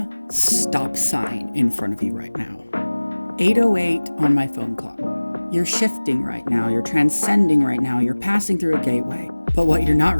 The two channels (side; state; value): both; inverted; correlation -1.00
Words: stop sign in front of you right now. 8:08 on my phone clock. You're shifting right now, you're transcending right now, you're passing through a gateway. But what you're not